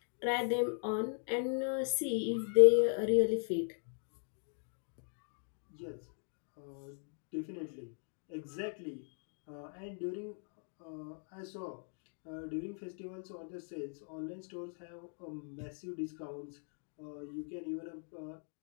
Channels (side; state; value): right; silent; 52 dB below the other